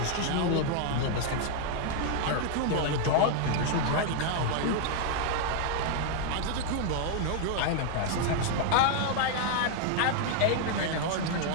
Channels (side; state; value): both; different; correlation 0.00